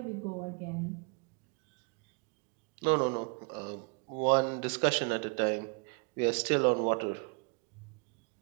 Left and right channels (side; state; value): left; quieter; 33.3 dB